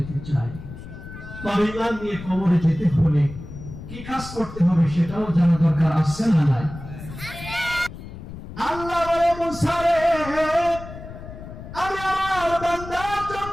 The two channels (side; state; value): left; noise; rumble, 13 dB below the sound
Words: চাই। তবে ঈমান নিয়ে কবরে যেতে হলে কি কাজ করতে হবে সেটাও জানা দরকার, আছে না নাই? আল্লাহ বলে, মুসা রে, আমি আমার বান্দার